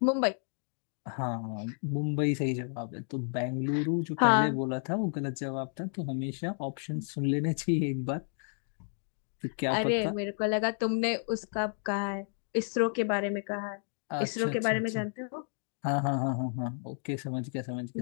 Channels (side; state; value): right; silent; 57 dB below the other